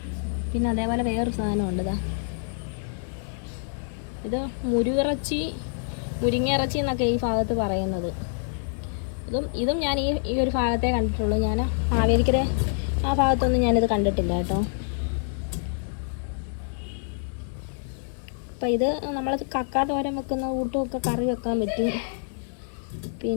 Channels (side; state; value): right; silent; digital silence